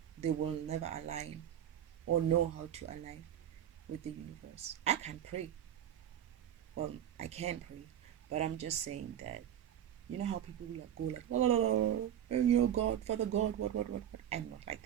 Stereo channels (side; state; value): left; quieter; 10.4 dB